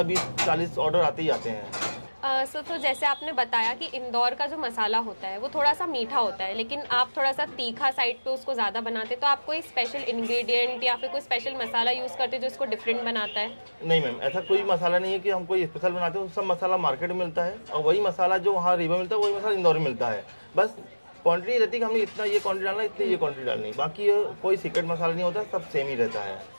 20, 40 ऑर्डर आते ही आते हैं। सर तो जैसे आपने बताया कि इंदौर का जो मसाला होता है वो थोड़ा सा मीठा होता है, लेकिन आप थोड़ा सा तीखा साइड पे उसको ज़्यादा बनाते हैं, तो आप कोई स्पेशल इंग्रेडिएंट या फिर कोई स्पेशल मसाला यूज़ करते हैं जो इसको डिफरेंट बनाता है? नहीं मैम, ऐसा कोई मसाला नहीं है कि हम कोई स्पेशल बनाते हैं, सब मसाला मार्केट में मिलता है, और वही मसाला जो वहाँ रीवा मिलता है वही मसाला इंदौर में मिलता है। बस क्वांटिटी रहती है कि हमने इतना ये क्वांटिटी डालना, इतनी ये क्वांटिटी डालनी, बाकी कोई सीक्रेट मसाला नहीं होता, सब सेम ही रहता है।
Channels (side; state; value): both; inverted; correlation -1.00